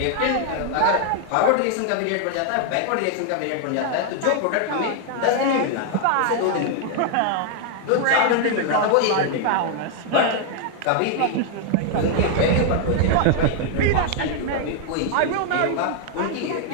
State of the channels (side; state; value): both; different; correlation 0.00